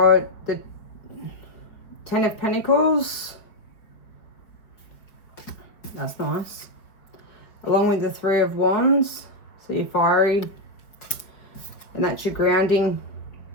the Ten of Pentacles. That's nice. Along with the Three of Wands. So you're fiery. And that's your grounding,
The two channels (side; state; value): right; late; 4.7 ms